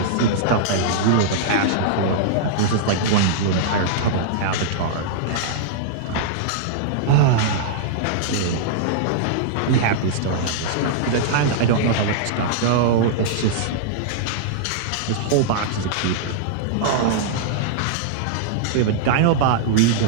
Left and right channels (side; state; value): both; different; correlation -0.02